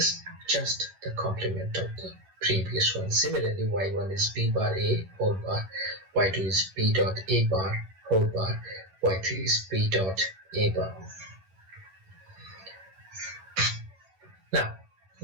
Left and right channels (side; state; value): left; late; 11 ms